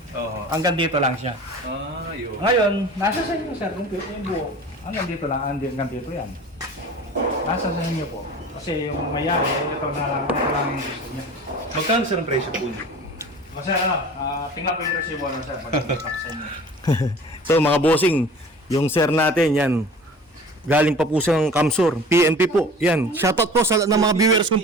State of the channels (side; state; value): both; normal; correlation 0.42